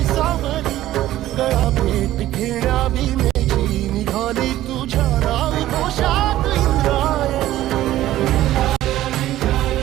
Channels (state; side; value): quieter; left; 14.4 dB